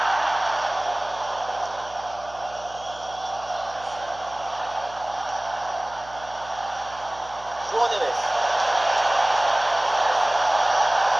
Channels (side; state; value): right; noise; hum, 21 dB below the sound